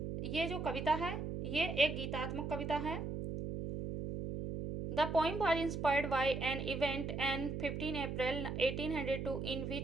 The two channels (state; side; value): noise; right; hum, 4 dB below the sound